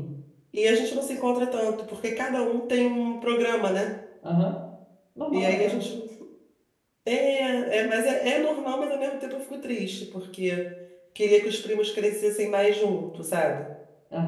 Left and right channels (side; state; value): both; identical; correlation 1.00